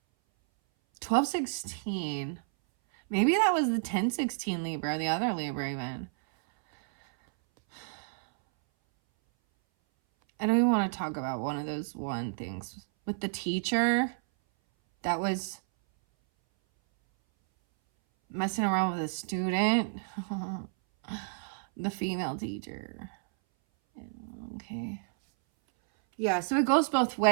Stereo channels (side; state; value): left; silent; 57 dB below the other